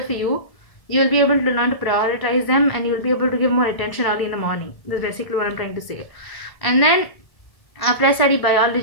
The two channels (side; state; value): right; late; 1.7 ms